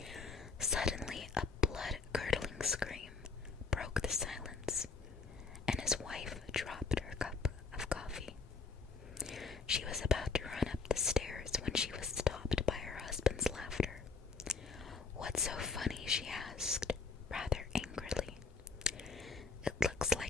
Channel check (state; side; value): quieter; right; 4.7 dB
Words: Suddenly, a blood-curdling scream broke the silence, and his wife dropped her cup of coffee. She was about to run up the stairs when she was stopped by her husband's laughter. "What's so funny?" she asked, rather angrily. "It looks